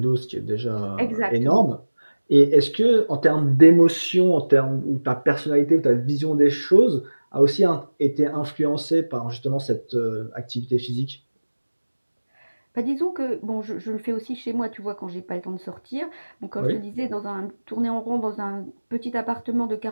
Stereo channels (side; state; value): both; inverted; correlation -1.00